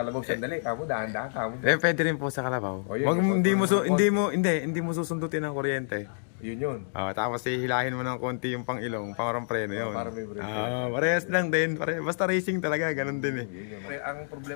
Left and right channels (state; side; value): silent; right; digital silence